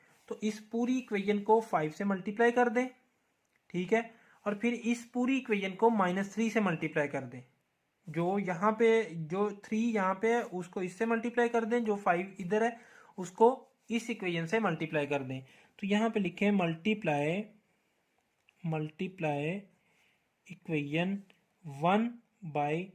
तो इस पूरी इक्वेशन को 5 से मल्टीप्लाई कर दें, ठीक है, और फिर इस पूरी इक्वेशन को -3 से मल्टीप्लाई कर दें। जो यहाँ पे जो 3 यहाँ पे है उसको इससे मल्टीप्लाई कर दें, जो 5 इधर है उसको इस इक्वेशन से मल्टीप्लाई कर दें। तो यहाँ पे लिखें मल्टीप्लाई इक्वेशन 1 बाई,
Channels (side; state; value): both; identical; correlation 1.00